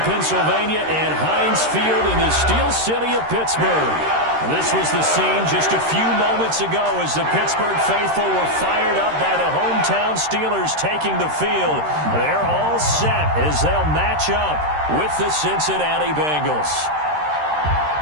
Pennsylvania and Heinz Field in the Steel City of Pittsburgh. This was the scene just a few moments ago as the Pittsburgh faithful were fired up by the hometown Steelers taking the field. They're all set as they'll match up with the Cincinnati Bengals.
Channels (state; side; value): late; left; 13 ms